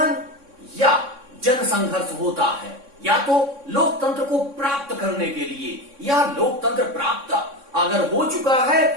या जनसंघर्ष होता है, या तो लोकतंत्र को प्राप्त करने के लिए, या लोकतंत्र प्राप्त अगर हो चुका है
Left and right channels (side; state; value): left; late; 3.6 ms